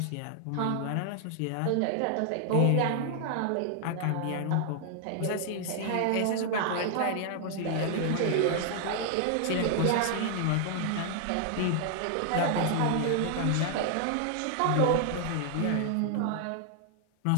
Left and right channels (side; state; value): both; different; correlation 0.00